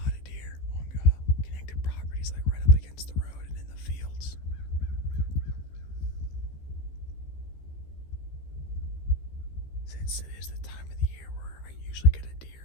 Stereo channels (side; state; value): right; late; 15 ms